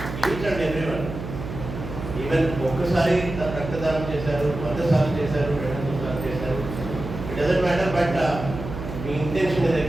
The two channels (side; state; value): right; noise; hum, 8 dB below the sound